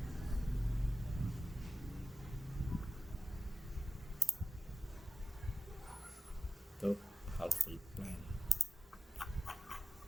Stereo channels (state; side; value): normal; both; correlation 0.94